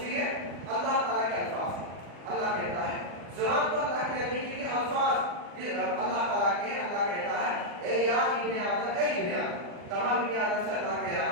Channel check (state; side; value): late; left; 40 ms